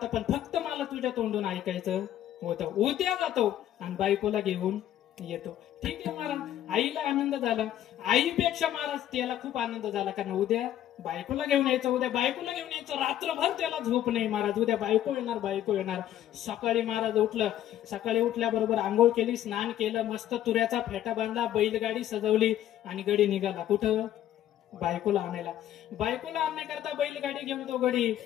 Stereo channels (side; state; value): right; quieter; 12.0 dB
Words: पण फक्त मला तुझ्या तोंडून ऐकायचं होतं. उद्या जातो आणि बायकोला घेऊन येतो. ठीक आहे महाराज. आईला आनंद झाला. आईपेक्षा महाराज त्याला खूप आनंद झाला, कारण उद्या बायकोला घेऊन यायचं, उद्या बायकोला घेऊन यायचं. रात्रभर त्याला झोप नाही महाराज. उद्या बायको येणार. सकाळी महाराज उठलं. सकाळी उठल्याबरोबर आंघोळ केली, स्नान केलं, मस्त तुऱ्याचा फेटा बांधला, बैलगाडी सजवली आणि गडी निघाला. कुठं? बायकोला आणायला. बायकोला आणण्याकरता बैलगाडी घेऊन तो गडी